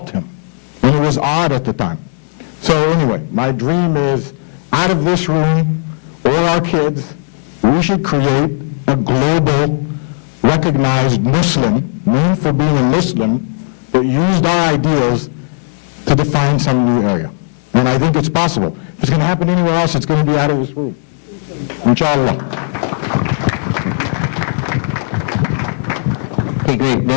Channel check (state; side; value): silent; right; digital silence